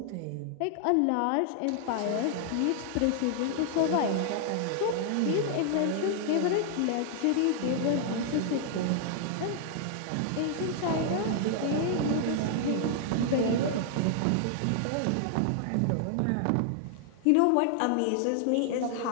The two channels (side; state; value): both; different; correlation 0.00